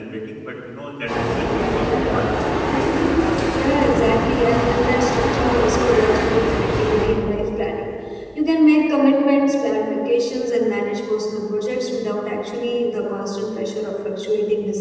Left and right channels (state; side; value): identical; both; correlation 1.00